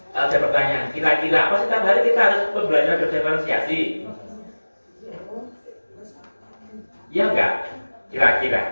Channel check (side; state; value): both; inverted; correlation -1.00